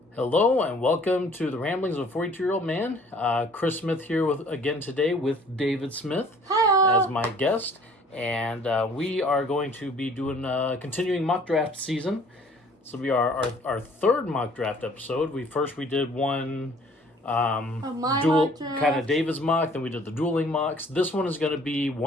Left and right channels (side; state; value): both; normal; correlation 0.54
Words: Hello and welcome to the Ramblings of a 42-Year-Old Man. Chris Smith here again today with David Smith as my guest. And we are going to be doing continuing mock draft season. This will be our third mock draft episode. We did one dual kind of David's mock, then we did the dueling mocks. This one is going to be